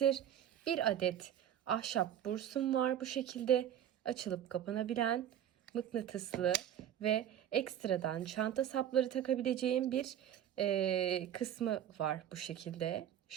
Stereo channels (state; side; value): quieter; left; 10.4 dB